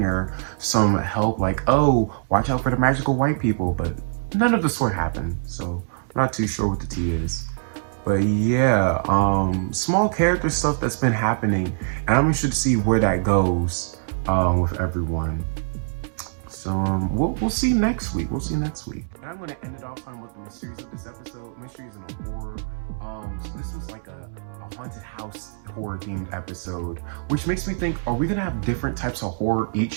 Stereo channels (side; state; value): left; silent; 63 dB below the other